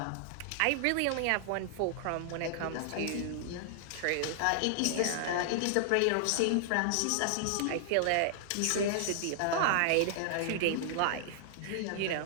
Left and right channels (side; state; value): both; different; correlation -0.01